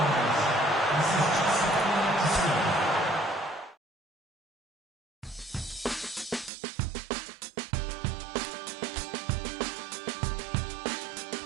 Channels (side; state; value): left; drops out; at 6.5 s